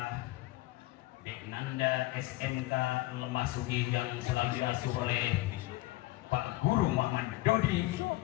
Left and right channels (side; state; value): right; quieter; 18.1 dB